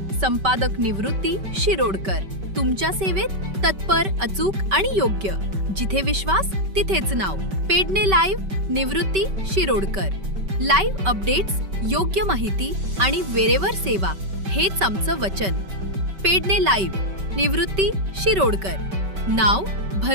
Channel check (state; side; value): late; left; 5.2 ms